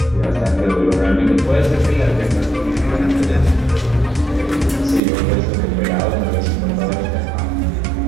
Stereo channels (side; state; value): left; drops out; at 5.0 s